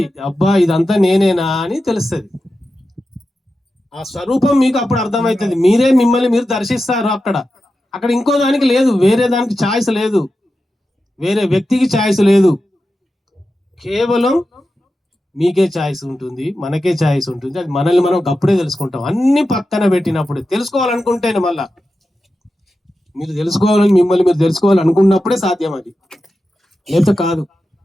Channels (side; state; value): both; normal; correlation 0.91